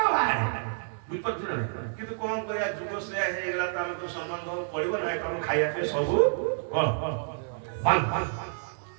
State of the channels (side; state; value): left; silent; digital silence